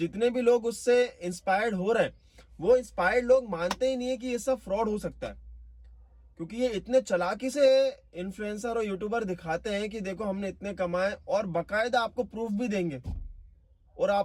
भी लोग उससे इंस्पायर्ड हो रहे हैं, वो इंस्पायर्ड लोग मानते ही नहीं है कि ये सब फ्रॉड हो सकता है। क्योंकि ये इतने चालाकी से इन्फ्लुएंसर और यूट्यूबर दिखाते हैं कि देखो हमने इतने कमाए, और बकायदा आपको प्रूफ भी देंगे और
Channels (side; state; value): both; identical; correlation 1.00